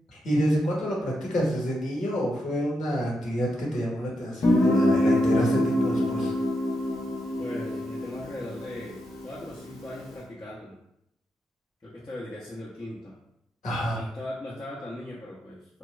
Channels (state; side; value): normal; both; correlation 0.84